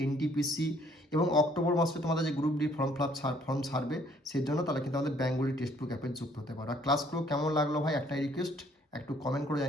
এনটিপিসি এবং অক্টোবর মাসে তোমাদের যে গ্রুপ ডি ফর্ম ছাড়বে সেই জন্য তাহলে কিন্তু আমাদের বেঙ্গলি টেক্সট বুক অ্যাপে যুক্ত হতে পারো। আর ক্লাসগুলো কেমন লাগলো ভাই একটাই রিকোয়েস্ট, একটু কমেন্ট করে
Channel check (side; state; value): both; normal; correlation 0.63